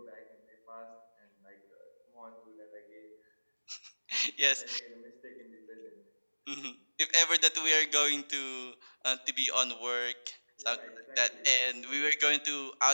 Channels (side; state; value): both; inverted; correlation -1.00